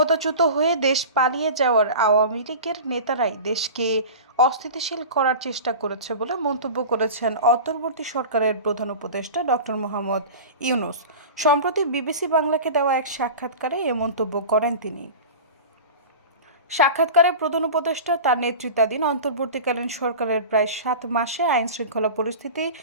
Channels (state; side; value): inverted; both; correlation -0.32